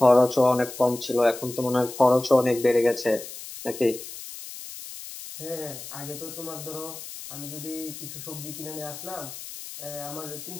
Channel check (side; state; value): left; noise; hiss, 12 dB below the sound